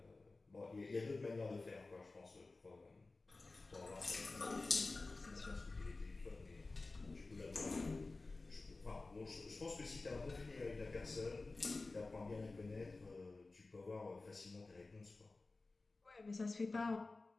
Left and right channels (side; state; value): right; quieter; 3.4 dB